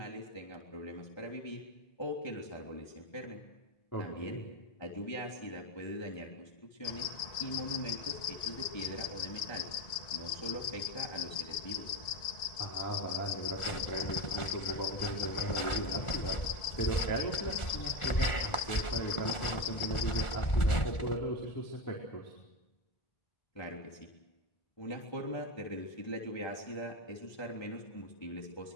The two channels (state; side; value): late; right; 1.4 ms